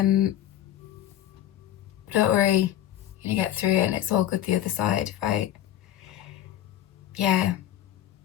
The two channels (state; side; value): quieter; right; 12.3 dB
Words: worry, you're gonna get through it and it's all good the other side, right? Yeah.